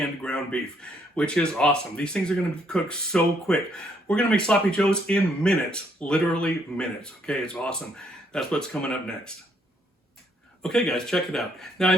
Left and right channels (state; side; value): normal; both; correlation 0.70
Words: ground beef, which is awesome. These things are going to be cooked so quick. We're going to make Sloppy Joes in minutes, literally minutes. Okay, it's awesome. That's what's coming up next. Okay guys, check it out. Now I